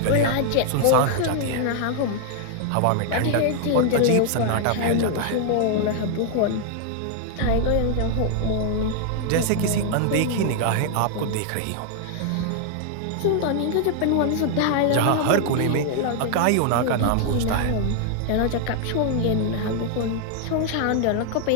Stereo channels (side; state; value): both; different; correlation 0.00